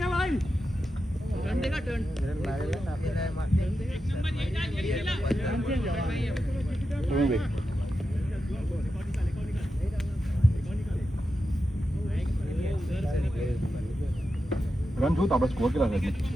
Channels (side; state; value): both; normal; correlation 0.89